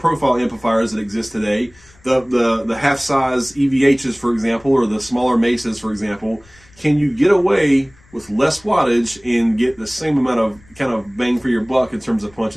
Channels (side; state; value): left; noise; rumble, 28 dB below the sound